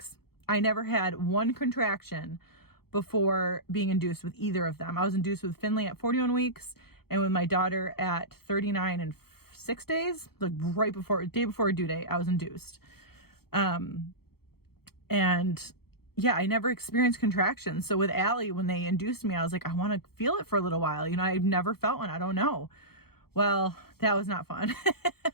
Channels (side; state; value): right; late; 0.95 ms